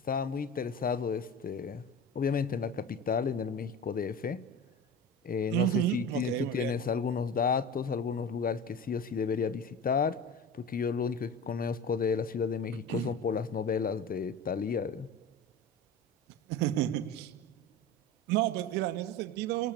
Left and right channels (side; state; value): both; normal; correlation 0.31